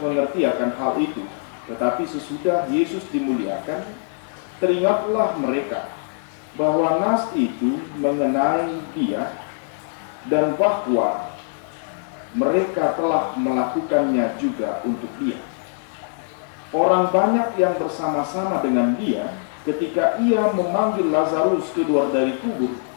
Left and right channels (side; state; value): right; silent; digital silence